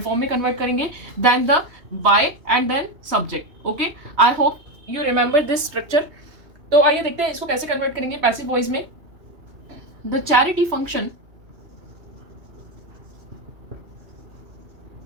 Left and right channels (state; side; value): late; left; 3.2 ms